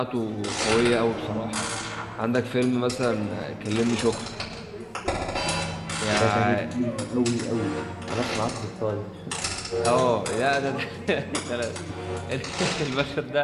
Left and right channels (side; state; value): both; identical; correlation 1.00